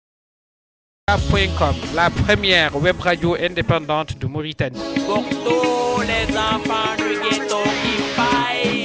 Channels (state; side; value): identical; both; correlation 1.00